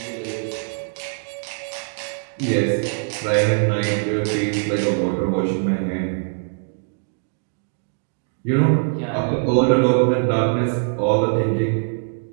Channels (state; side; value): silent; left; 64 dB below the other